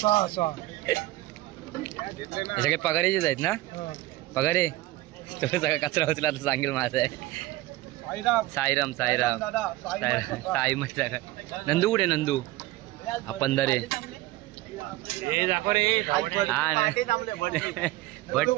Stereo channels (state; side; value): quieter; left; 17.7 dB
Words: 6 सगळे पगारीचेच आहेत ना? पगार आहे तो सगळा कचरा उचला तर सांगेल माझा आहे. साईराम साईराम साई मग नंदू कुठे? नंदू आपण दरे भट